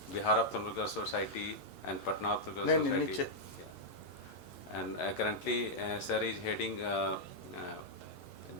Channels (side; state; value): both; normal; correlation -0.05